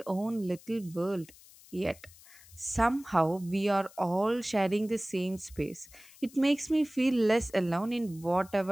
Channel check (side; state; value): left; noise; hiss, 23 dB below the sound